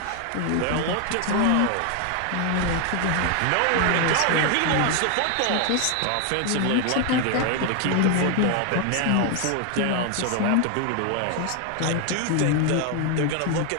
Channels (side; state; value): both; different; correlation 0.01